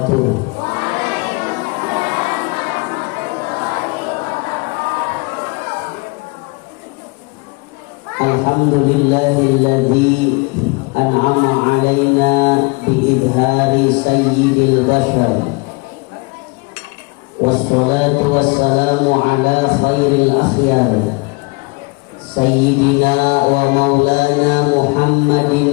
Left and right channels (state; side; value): quieter; right; 28.8 dB